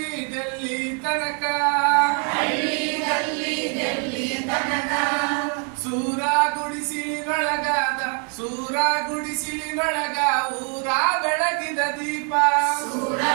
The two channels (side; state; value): left; quieter; 39.7 dB